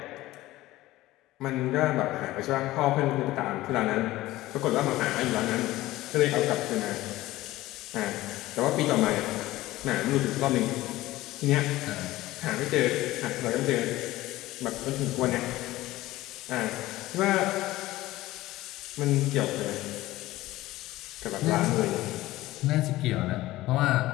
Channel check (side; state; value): right; quieter; 17.1 dB